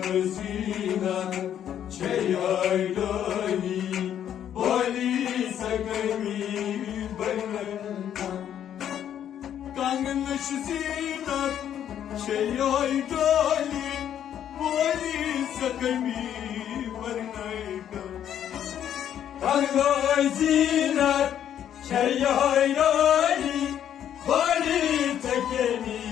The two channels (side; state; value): right; quieter; 10.0 dB